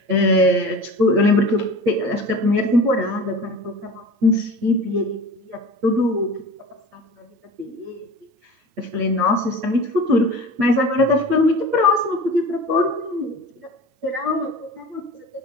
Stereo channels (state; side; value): late; left; 8.8 ms